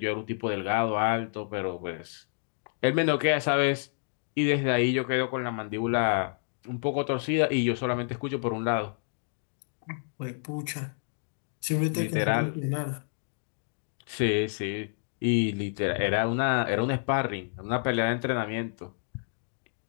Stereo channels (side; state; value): right; silent; digital silence